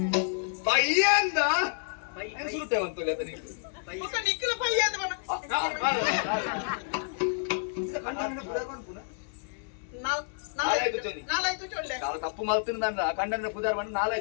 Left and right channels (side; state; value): right; silent; 58 dB below the other